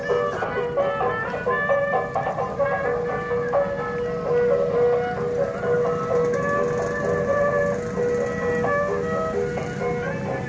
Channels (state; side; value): identical; both; correlation 1.00